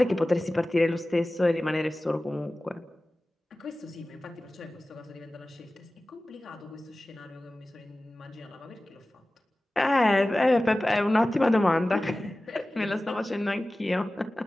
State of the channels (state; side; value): normal; both; correlation 0.97